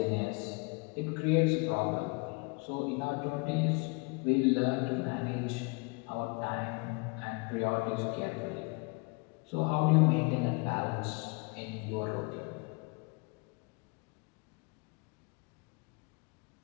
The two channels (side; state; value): right; quieter; 30.2 dB